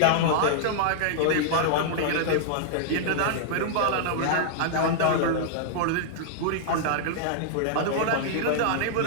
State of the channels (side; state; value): both; different; correlation -0.01